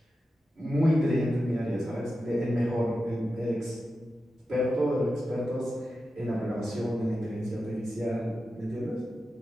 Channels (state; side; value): normal; both; correlation 0.91